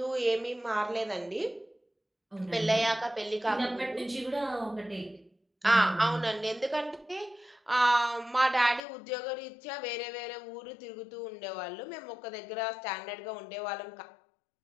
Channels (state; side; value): drops out; right; at 8.8 s